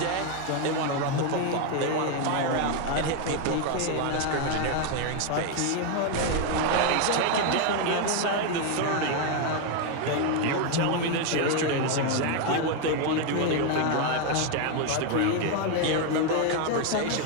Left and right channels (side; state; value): both; different; correlation 0.01